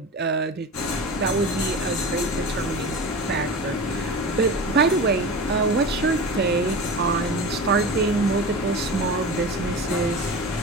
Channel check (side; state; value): both; normal; correlation 0.30